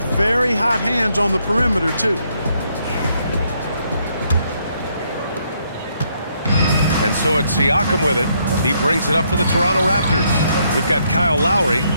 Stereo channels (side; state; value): both; inverted; correlation -0.73